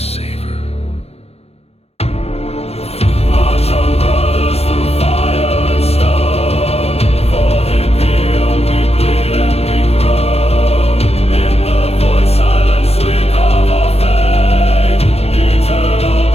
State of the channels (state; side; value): late; right; 0.30 ms